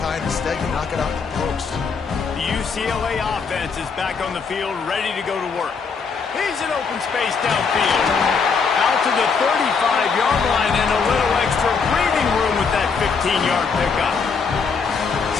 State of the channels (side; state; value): right; quieter; 5.4 dB